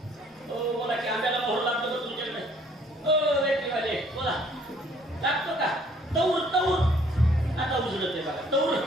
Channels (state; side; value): normal; both; correlation 0.60